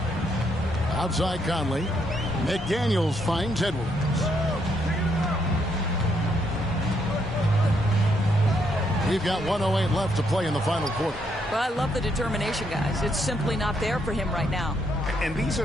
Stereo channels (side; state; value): both; normal; correlation 0.75